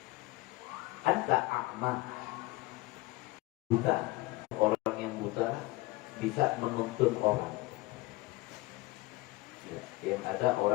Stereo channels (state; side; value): quieter; right; 21.1 dB